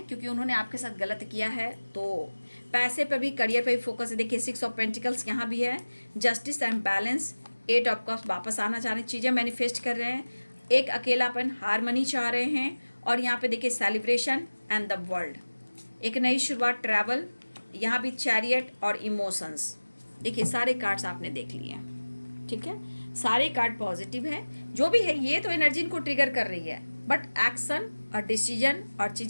क्योंकि उन्होंने आपके साथ गलत किया है, तो पैसे पे भी, करियर पे भी फोकस है। देखिए 6 ऑफ पेंटिकल्स यहाँ भी है, justice and balance, 8 of cups, वापस आना चाह रहे हैं, चीज़ें मैनिफेस्ट कर रहे हैं, एक अकेलापन, हारमनी चाह रहे हैं, और यहाँ पे देखिए सेलिब्रेशन एंड द वर्ल्ड, एक नई शुरुआत, ट्रैवल, यहाँ भी चैरियट और इमोशंस। देखिए सारे कार्ड्स आपने देख लिए, ठीक है, सारे कार्ड पॉजिटिव है। जो भी है ये तो एनर्जी इनको ट्रिगर कर रही है, बट एक्शन और डिसीजन और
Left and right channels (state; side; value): inverted; both; correlation -1.00